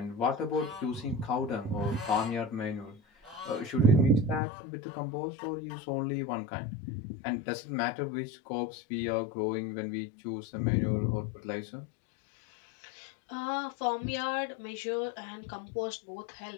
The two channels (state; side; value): drops out; right; at 4.4 s